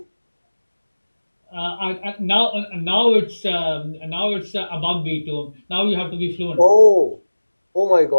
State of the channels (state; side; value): inverted; both; correlation -1.00